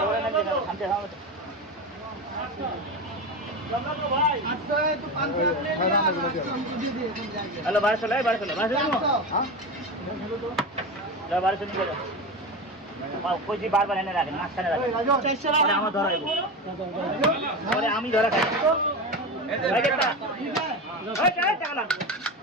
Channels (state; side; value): normal; both; correlation 0.22